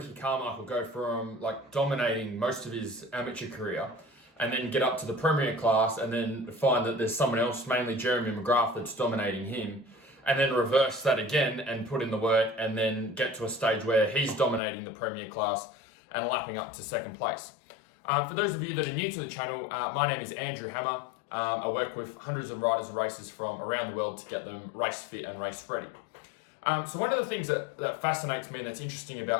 Carmichael go from like dominating most of his amateur career and then get up to the premier class and then find that there's someone else, mainly Jeremy McGrath, that's dominating him, and then reverse that again and put in the work and then get to a stage where he's dominating the premier class and lapping up to second place? For those of you that are new to the channel, my name is Andrew Hammer. I work with hundreds of riders and racers from around the world to get them race fit and race ready. So one of the things that fascinates me and that's interesting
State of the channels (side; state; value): right; drops out; at 14.6 s